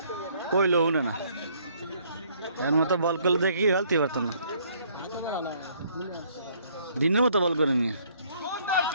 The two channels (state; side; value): inverted; both; correlation -0.63